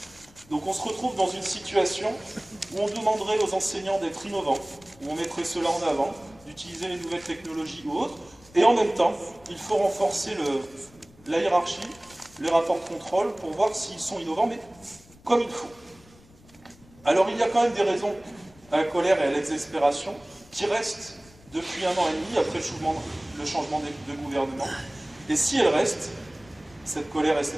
Donc on se retrouve dans une situation où on demanderait aux enseignants d'être innovants, où on mettrait cela en avant, d'utiliser les nouvelles technologies ou autres, et en même temps, il faut renforcer la hiérarchie, les rapports de contrôle pour voir s'ils sont innovants, mais comme il faut. Alors il y a quand même des raisons à la colère et à l'exaspération qui restent depuis 1 an et demi après le changement de gouvernement. Et si elles restent, cette colère et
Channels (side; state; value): left; noise; rumble, 26 dB below the sound